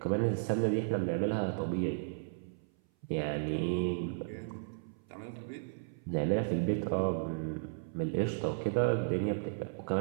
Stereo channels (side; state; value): left; silent; 55 dB below the other